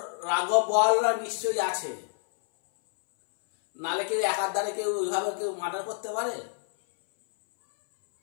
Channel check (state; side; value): silent; right; 60 dB below the other